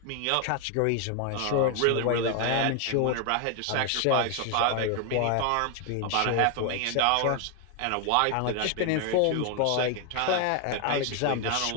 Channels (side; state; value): both; different; correlation 0.01